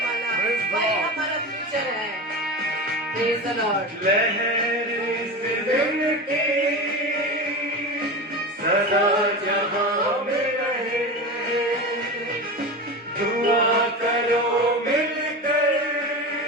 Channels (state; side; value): normal; both; correlation 0.25